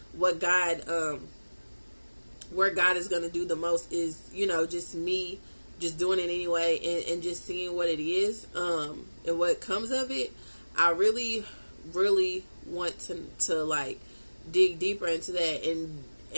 what God, where God is going to do the most is, just me just doing it anyway, and just seeing what it is, and what comes of it. I really, really want to like dig deeper into that. And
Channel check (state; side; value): inverted; both; correlation -1.00